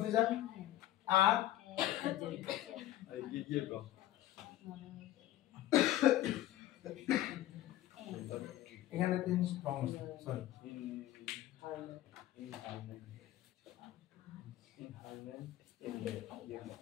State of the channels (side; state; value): right; quieter; 14.2 dB